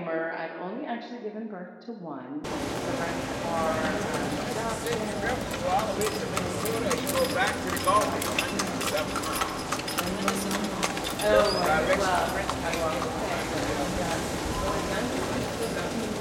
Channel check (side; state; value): both; identical; correlation 1.00